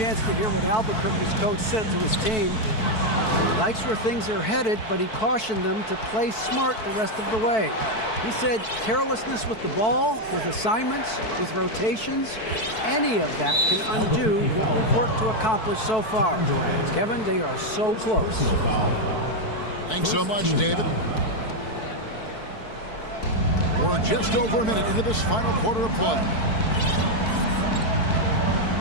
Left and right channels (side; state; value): right; late; 4.6 ms